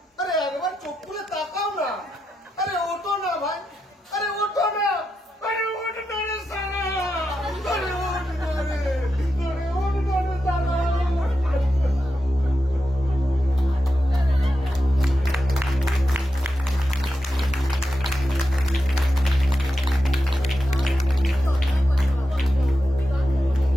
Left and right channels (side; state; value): both; normal; correlation 0.87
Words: আরে একবার চোখ খুলে তাকাও না। আরে ওঠো না ভাই। আরে ওঠো না। আরে ওঠো না রে সালা। আরে ওঠো না রে। আরে ওঠো না রে সালা।